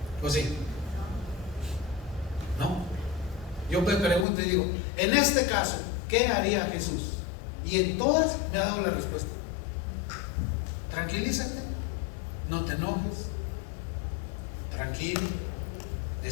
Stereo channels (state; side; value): drops out; right; at 4.2 s